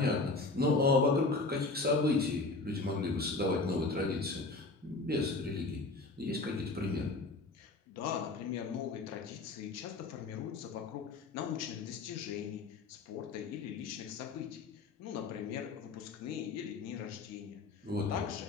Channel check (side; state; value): right; quieter; 3.6 dB